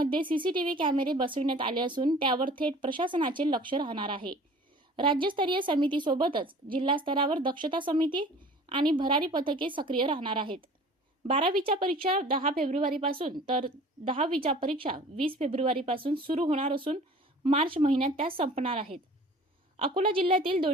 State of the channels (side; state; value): both; normal; correlation 0.46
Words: सीसीटीव्ही कॅमेरे बसविण्यात आले असून त्यावर थेट प्रशासनाचे लक्ष राहणार आहे। राज्यस्तरीय समितीसोबतच जिल्हा स्तरावर दक्षता समिती आणि भरारी पथके सक्रिय राहणार आहेत। 12वीच्या परीक्षा 10 फेब्रुवारीपासून तर 10वीच्या परीक्षा 20 फेब्रुवारीपासून सुरू होणार असून मार्च महिन्यात त्या संपणार आहेत। अकोला जिल्ह्यातील